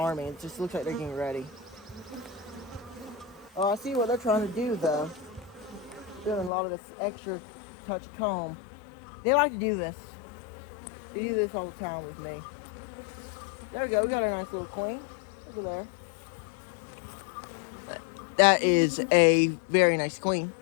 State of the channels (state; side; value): drops out; right; at 6.5 s